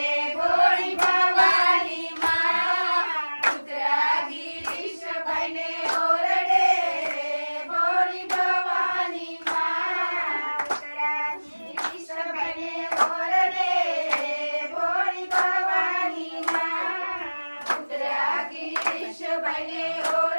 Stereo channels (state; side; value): inverted; both; correlation -1.00